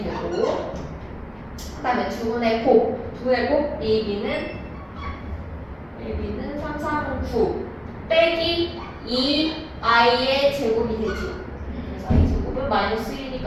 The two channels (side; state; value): both; identical; correlation 1.00